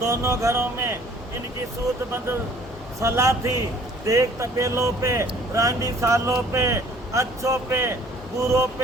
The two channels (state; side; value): normal; both; correlation 0.54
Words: घरों में इनकी सूतबद्ध सलाह थी, देख तपेलों पे, रांडी सालों पे, अच्छों पे, बुरों